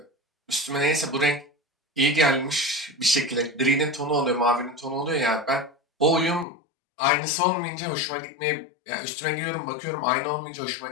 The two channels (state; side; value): drops out; right; at 6.5 s